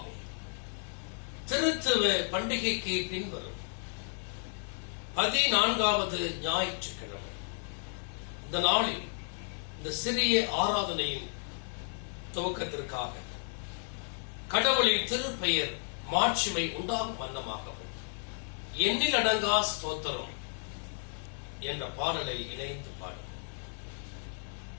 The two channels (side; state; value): right; silent; 56 dB below the other